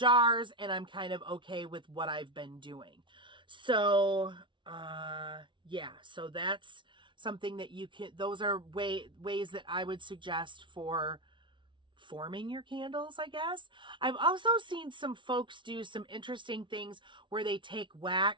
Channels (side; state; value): left; late; 0.24 ms